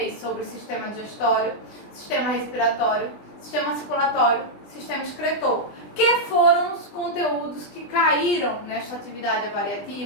sobre sistema digestório, sistema respiratório, sistema circulatório, sistema excretor, que foram os conteúdos que caíram nesta atividade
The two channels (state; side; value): late; right; 20 ms